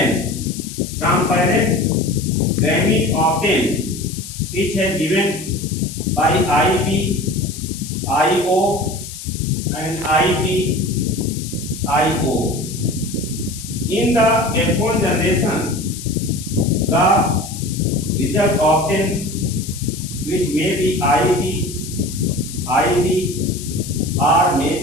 from parent gamete obtained which has given by IB, IO and IB, IO. In the F1 generation, the result obtained which may be IB, or may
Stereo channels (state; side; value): noise; left; hiss, 12 dB below the sound